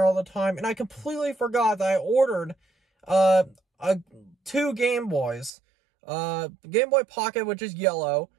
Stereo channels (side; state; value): left; drops out; at 5.5 s